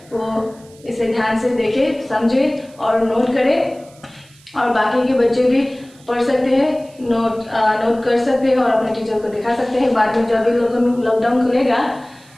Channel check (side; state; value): right; noise; hiss, 27 dB below the sound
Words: वो इसे ध्यान से देखें, समझें और नोट करें। और बाकी के बच्चे भी पढ़ सकते हैं, नोट कर सकते हैं और अपने टीचर को दिखा सकते हैं बाद में जब भी लॉकडाउन खुलेगा।